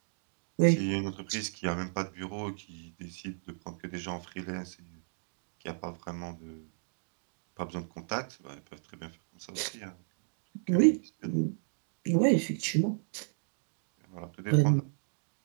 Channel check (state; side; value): silent; left; digital silence